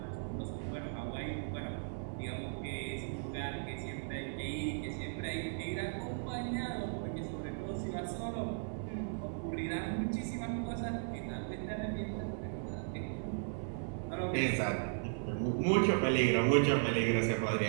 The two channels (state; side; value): silent; left; 53 dB below the other